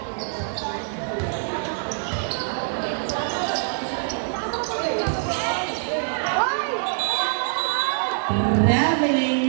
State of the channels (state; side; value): silent; left; 62 dB below the other